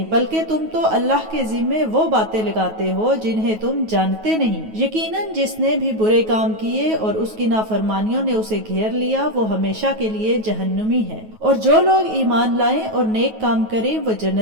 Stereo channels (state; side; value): late; left; 9.3 ms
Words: بلکہ تم تو اللہ کے ذمے وہ باتیں لگاتے ہو جنہیں تم جانتے نہیں۔ یقیناً جس نے بھی برے کام کیے اور اس کی نافرمانیوں نے اسے گھیر لیا وہ ہمیشہ کے لیے جہنمی ہے، اور جو لوگ ایمان لائیں اور نیک کام کریں وہ